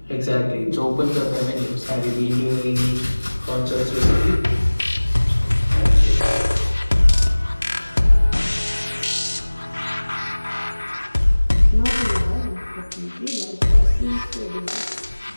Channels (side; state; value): both; inverted; correlation -1.00